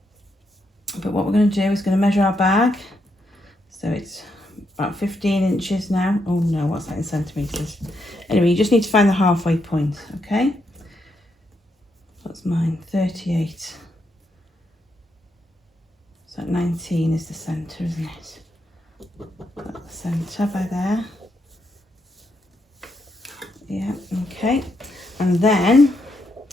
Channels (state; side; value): normal; both; correlation 0.80